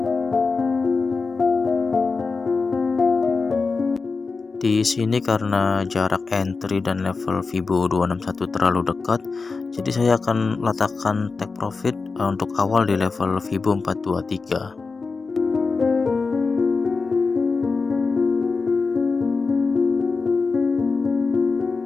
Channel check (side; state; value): right; quieter; 4.4 dB